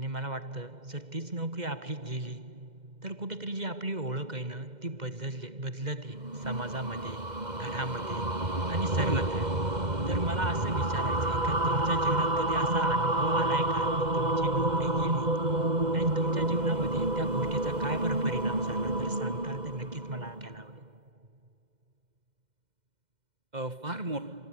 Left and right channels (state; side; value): late; left; 2.0 ms